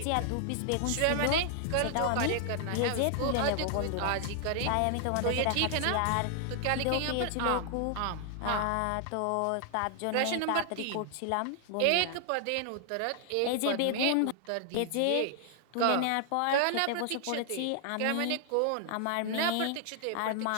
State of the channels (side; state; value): both; different; correlation 0.00